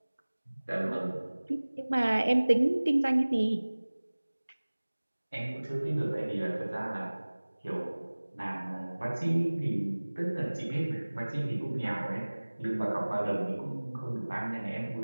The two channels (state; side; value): inverted; both; correlation -1.00